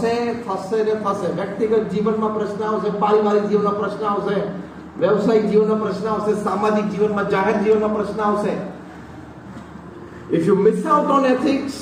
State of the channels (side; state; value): both; identical; correlation 1.00